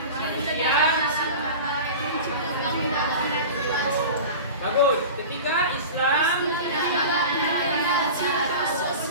bagus. Ketiga, Islam.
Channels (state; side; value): inverted; both; correlation -0.33